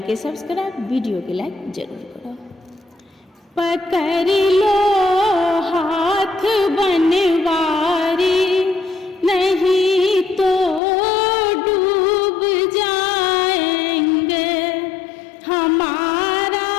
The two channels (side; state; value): right; drops out; at 10.8 s